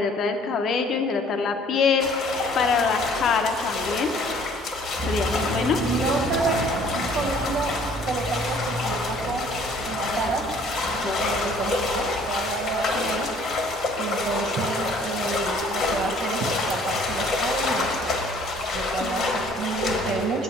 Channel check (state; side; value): normal; both; correlation 0.56